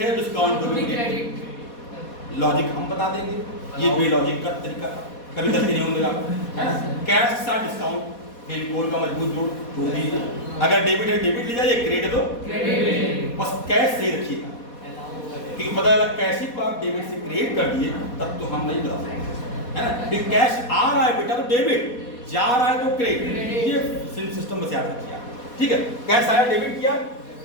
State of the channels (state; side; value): late; right; 4.2 ms